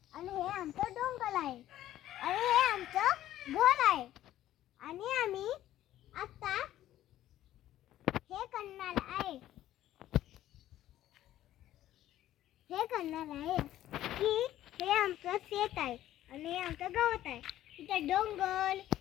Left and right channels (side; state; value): right; quieter; 13.3 dB